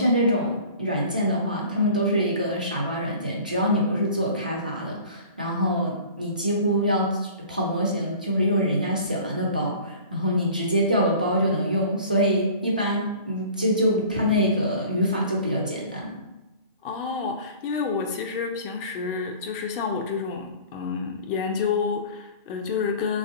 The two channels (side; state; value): both; inverted; correlation -0.45